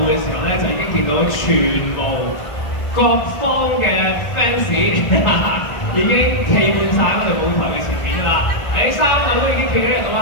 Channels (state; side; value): late; right; 1.4 ms